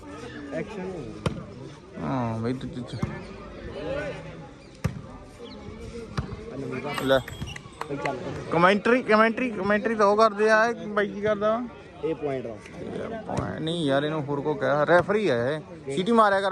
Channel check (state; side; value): identical; both; correlation 1.00